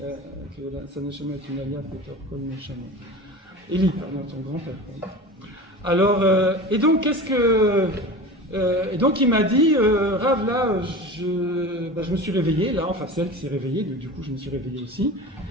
que sa neshama est une alia, peut-être comme neshama. Eli, pardon, son grand-père. Alors, et donc, et donc, il m'a dit, Rav, là, je me suis réveillé, là, enfin, c'est elle qui s'est réveillée, du coup, je me suis réveillé aussi.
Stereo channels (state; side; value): normal; both; correlation 0.33